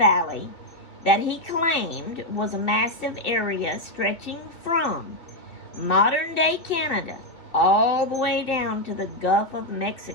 that he claimed was a massive area stretching from modern-day Canada all the way down to the Gulf of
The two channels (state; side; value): late; right; 2.7 ms